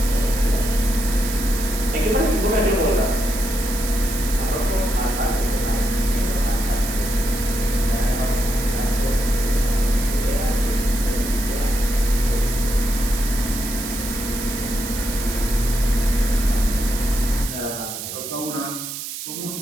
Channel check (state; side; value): noise; right; hiss, 7 dB below the sound